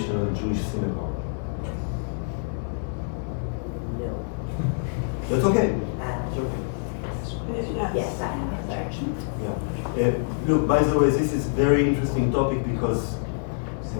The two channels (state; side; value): silent; right; 61 dB below the other